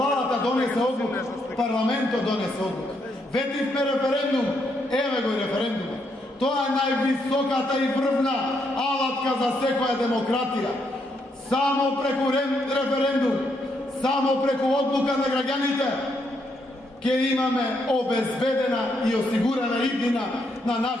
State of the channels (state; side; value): normal; both; correlation 0.77